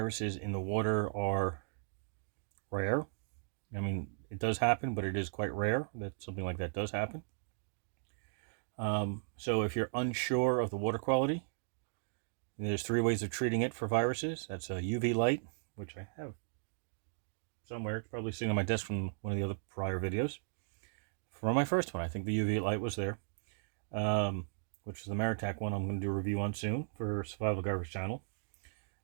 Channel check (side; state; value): left; silent; digital silence